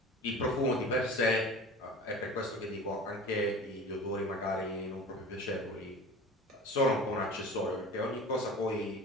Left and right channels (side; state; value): both; normal; correlation 0.38